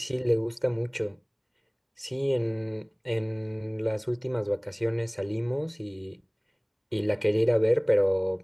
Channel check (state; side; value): identical; both; correlation 1.00